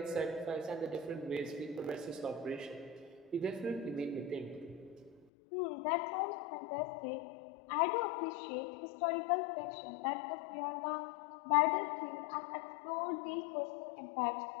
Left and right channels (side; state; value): right; drops out; at 5.2 s